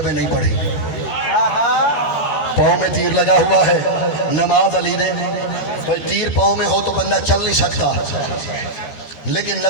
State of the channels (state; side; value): late; right; 13 ms